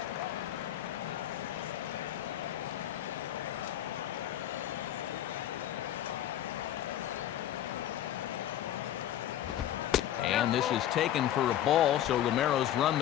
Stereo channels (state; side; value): quieter; right; 11.8 dB